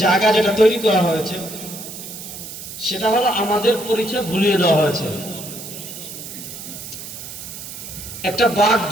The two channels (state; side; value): noise; right; hiss, 11 dB below the sound